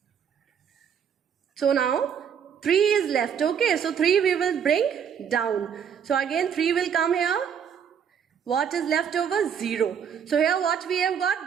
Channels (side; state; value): left; quieter; 7.8 dB